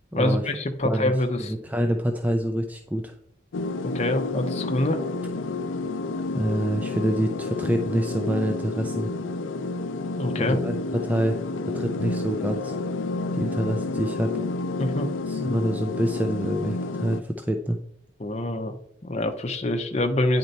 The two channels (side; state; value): both; normal; correlation 0.67